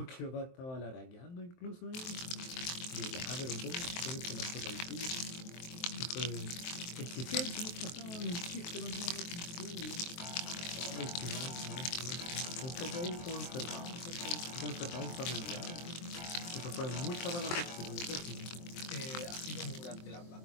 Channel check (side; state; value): right; late; 23 ms